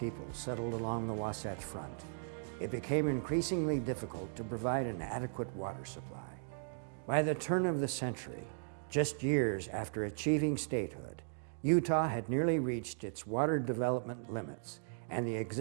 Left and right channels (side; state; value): left; silent; digital silence